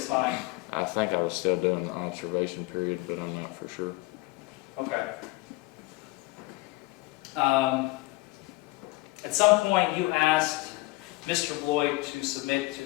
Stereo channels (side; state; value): right; quieter; 21.8 dB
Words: fine? I think I was still doing the observation period, but I'm not for sure. Okay. At some point, you asked Mr. Boyd to submit